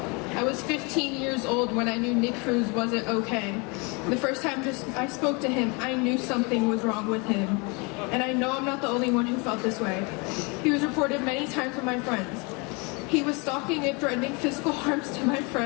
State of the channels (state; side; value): quieter; right; 30.2 dB